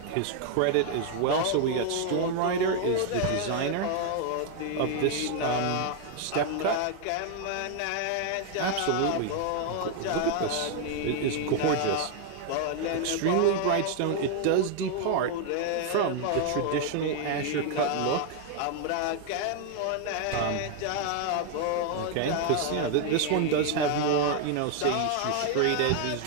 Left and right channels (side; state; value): both; different; correlation 0.00